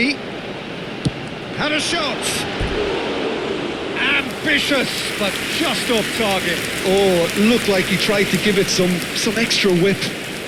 Had a shot. Ambitious, but just off target. Oh, looked like he tried to give it some extra whip.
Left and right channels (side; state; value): both; identical; correlation 1.00